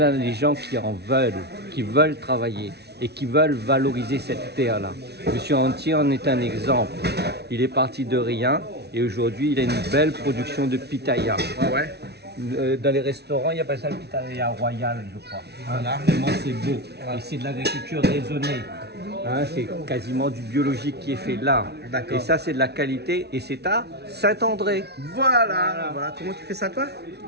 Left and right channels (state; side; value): late; left; 0.49 ms